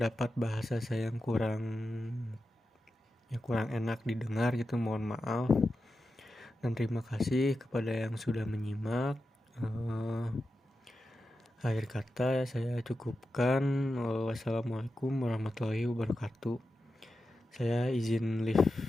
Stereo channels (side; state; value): both; normal; correlation 0.90